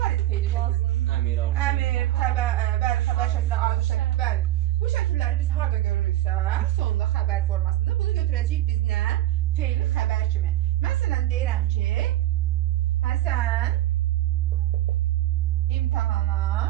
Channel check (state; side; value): quieter; left; 14.8 dB